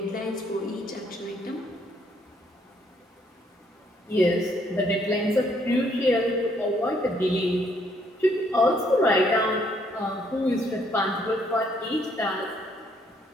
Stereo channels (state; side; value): normal; both; correlation 0.68